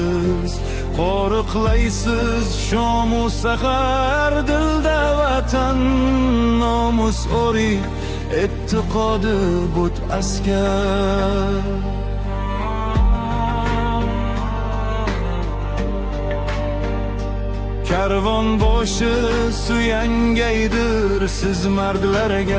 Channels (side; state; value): both; identical; correlation 1.00